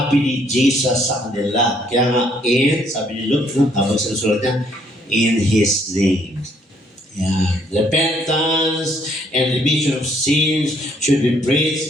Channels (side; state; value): both; normal; correlation 0.67